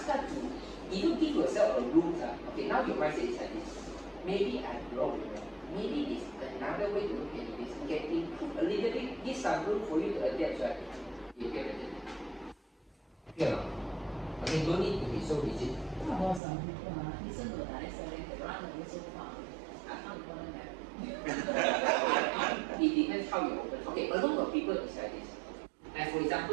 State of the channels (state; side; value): drops out; left; at 16.4 s